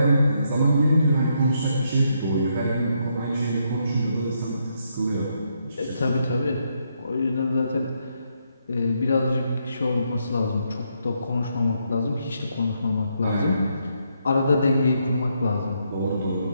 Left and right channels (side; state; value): both; inverted; correlation -0.77